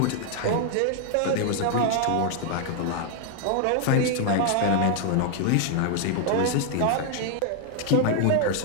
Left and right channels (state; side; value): different; both; correlation 0.00